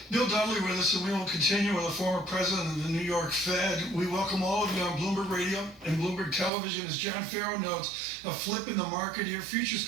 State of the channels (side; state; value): left; drops out; at 6.5 s